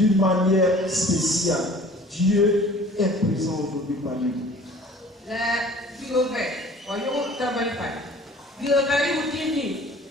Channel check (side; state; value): both; normal; correlation 0.48